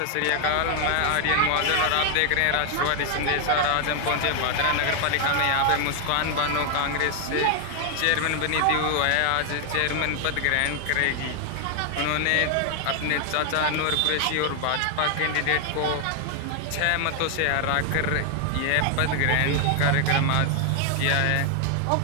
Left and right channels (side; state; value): both; different; correlation 0.00